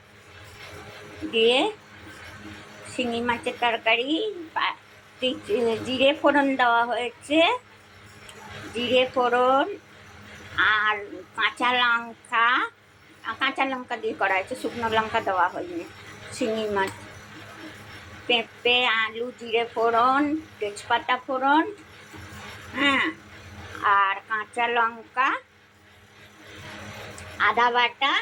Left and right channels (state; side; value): identical; both; correlation 1.00